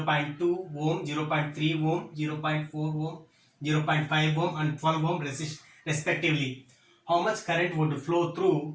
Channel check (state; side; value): identical; both; correlation 1.00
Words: ohm, 0.3 ohm, 0.4 ohm, 0.5 ohm and 12 ohm respectively. How much current would flow